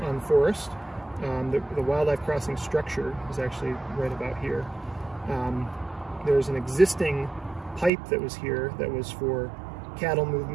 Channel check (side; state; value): left; drops out; at 7.9 s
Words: on Forest. The wildlife crossing structure is actually right about here. There's an existing pipe that was here that was for cattle